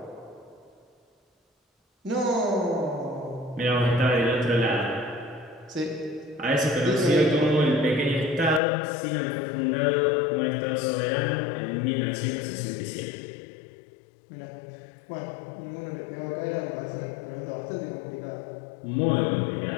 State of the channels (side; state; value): right; drops out; at 8.6 s